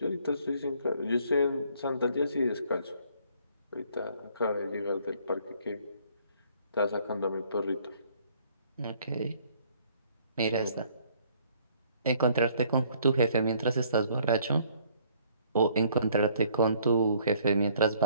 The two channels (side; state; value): both; inverted; correlation -0.61